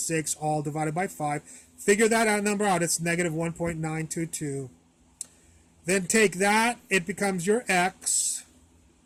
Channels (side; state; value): both; identical; correlation 1.00